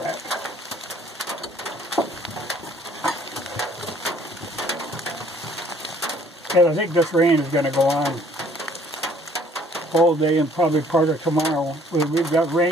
rack. And I think this rain is going to go on all day and probably part of tomorrow. We've got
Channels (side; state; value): both; normal; correlation 0.58